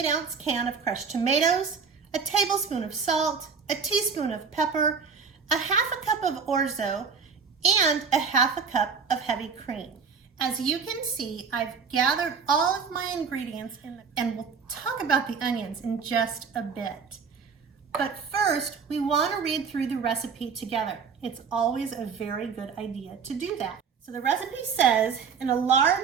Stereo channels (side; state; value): left; quieter; 5.8 dB